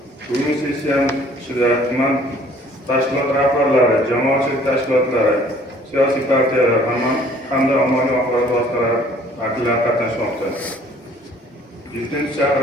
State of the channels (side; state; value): both; normal; correlation 0.56